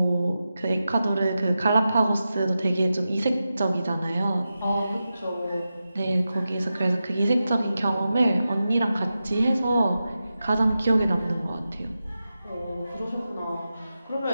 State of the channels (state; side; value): inverted; both; correlation -0.91